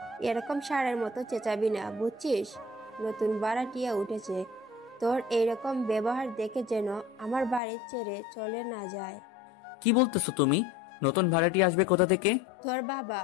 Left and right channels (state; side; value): drops out; right; at 7.6 s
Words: এরকম ষাঁড়ের মতো চেঁচাবি না, বুঝছিস? নতুন ভাড়াটিয়া উঠেছে, তোর এইরকম ব্যবহার দেখে যেন আমার বাড়ি ছেড়ে চলে না যায়। কি বলতেছো তুমি? নতুন ভাড়াটি আসবে কোথা থেকে? তোর বাবা